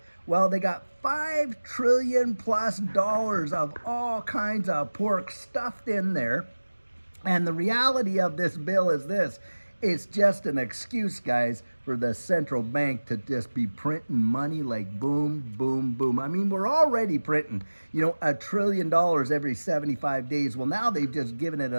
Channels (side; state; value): both; inverted; correlation -1.00